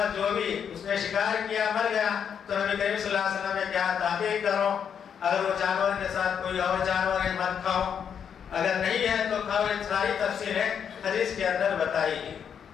جو بھی اس نے شکار کیا مر گیا تو نبی کریم صلی اللہ علیہ وسلم نے کیا تحقیق کرو، اگر وہ جانور کے ساتھ کوئی اور جانور ہے مت کھاؤ، اگر نہیں ہے تو کھاؤ۔ یہ ساری تفصیلیں حدیث کے اندر بتائی گئی۔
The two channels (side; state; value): right; quieter; 7.8 dB